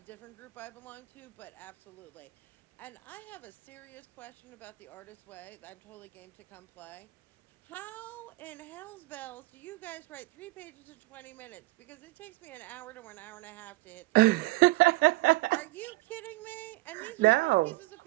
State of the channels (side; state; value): left; quieter; 20.6 dB